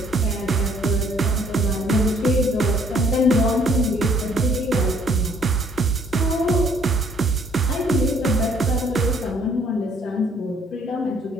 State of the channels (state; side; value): normal; both; correlation 0.62